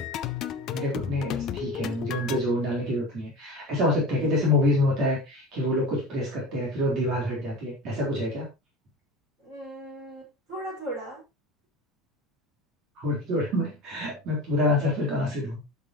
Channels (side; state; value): both; normal; correlation 0.33